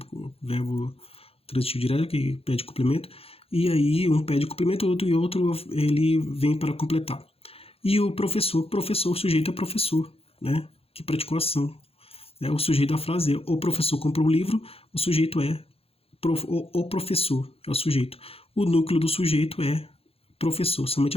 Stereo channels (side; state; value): right; late; 0.28 ms